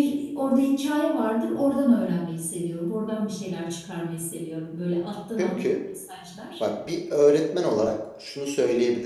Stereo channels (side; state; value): both; identical; correlation 1.00